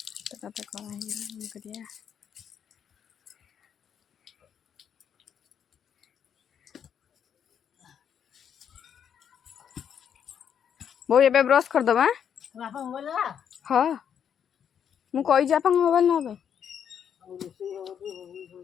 तो करिया वो ये ब्रश कर दबा हाँ मु कही आप मोबाइल ना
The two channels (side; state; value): right; quieter; 8.3 dB